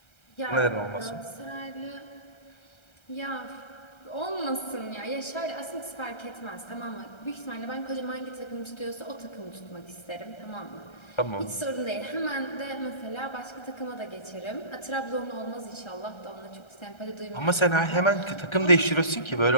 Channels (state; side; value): late; right; 1.3 ms